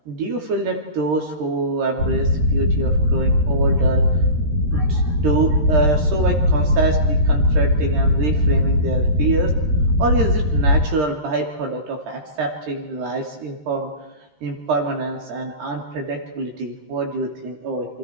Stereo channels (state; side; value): late; left; 13 ms